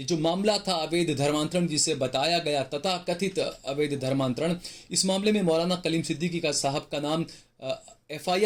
जो मामला था अवैध धर्मांतरण जिसे बताया गया, तथा कथित अवैध धर्मांतरण, इस मामले में मौलाना कलीम सिद्दीकी का साहब का नाम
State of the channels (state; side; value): identical; both; correlation 1.00